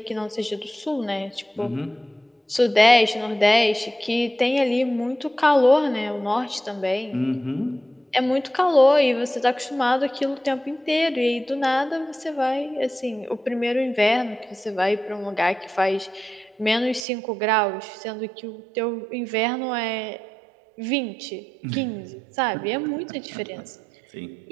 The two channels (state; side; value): drops out; left; at 17.1 s